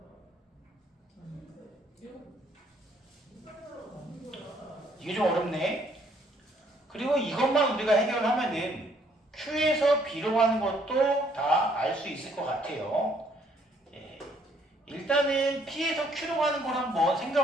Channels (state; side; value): normal; both; correlation 0.66